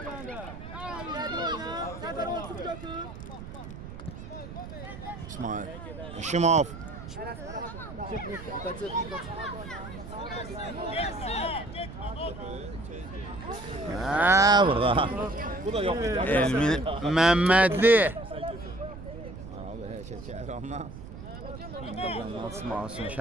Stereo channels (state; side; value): noise; right; rumble, 12 dB below the sound